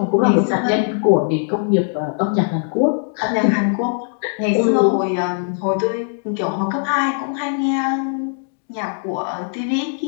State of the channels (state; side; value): silent; right; digital silence